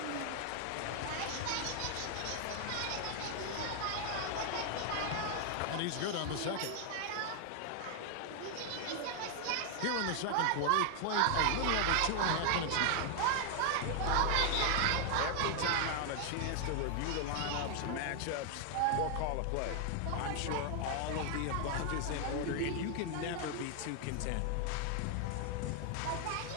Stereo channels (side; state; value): both; different; correlation 0.00